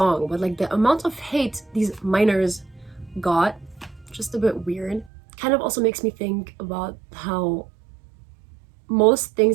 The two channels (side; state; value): left; drops out; at 5.1 s